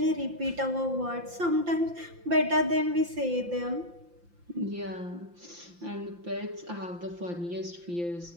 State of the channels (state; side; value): late; left; 5.8 ms